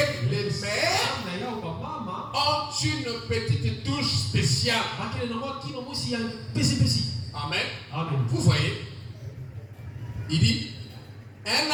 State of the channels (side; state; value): both; identical; correlation 1.00